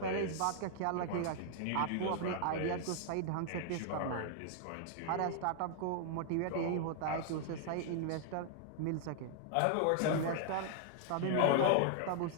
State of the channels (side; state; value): both; different; correlation -0.01